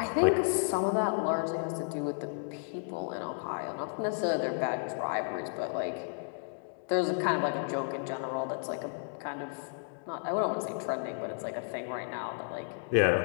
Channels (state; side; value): silent; right; digital silence